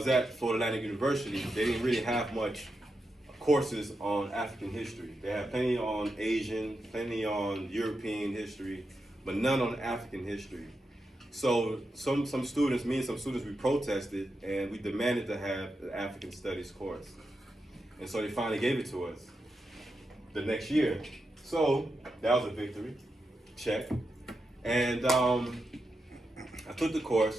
at, Florida Atlantic University, they didn't really have much courses on African history. They had plenty on Asian, plenty on European history, but none on African history. So some students, me and some students, we protested and we demanded to have the African Studies course. And so they finally gave it to us the next year. So that was a victory, check. And I took the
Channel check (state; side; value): normal; both; correlation 0.87